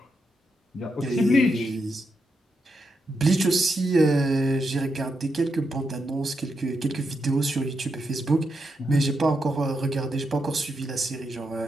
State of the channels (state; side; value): normal; both; correlation 0.83